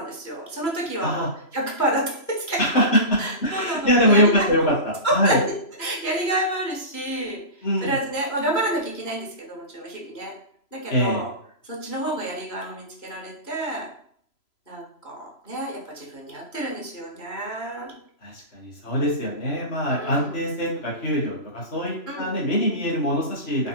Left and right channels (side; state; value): right; late; 3.0 ms